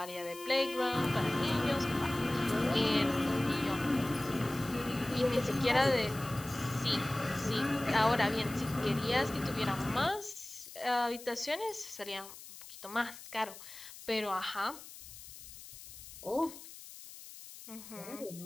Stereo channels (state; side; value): noise; left; hiss, 15 dB below the sound